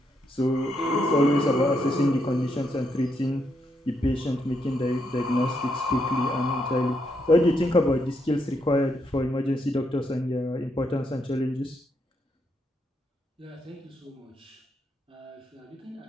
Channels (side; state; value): both; normal; correlation 0.78